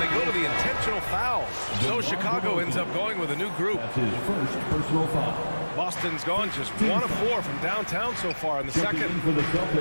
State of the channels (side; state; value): both; inverted; correlation -1.00